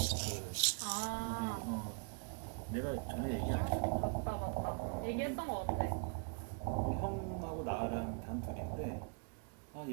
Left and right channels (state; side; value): quieter; left; 38.8 dB